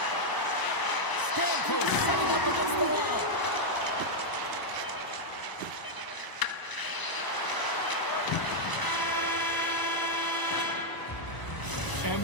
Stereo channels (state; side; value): late; right; 1.0 ms